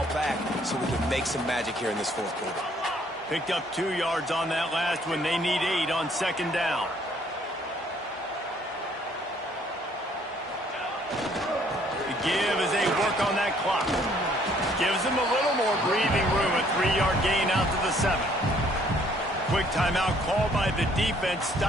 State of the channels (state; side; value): normal; both; correlation 0.63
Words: back so we can make some magic here in this fourth quarter. Picked up 2 yards on that last one. They need 8 on second down. Give as they work on that clock. Gives them a little more breathing room. A 3-yard gain out to the 7. Quick timeout called by the defense,